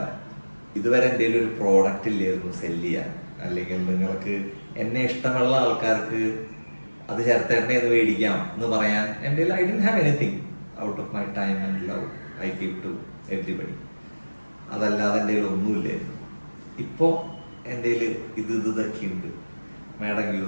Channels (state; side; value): inverted; both; correlation -1.00